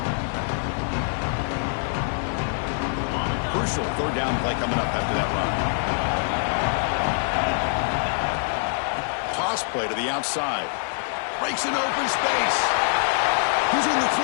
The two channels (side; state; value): right; silent; 60 dB below the other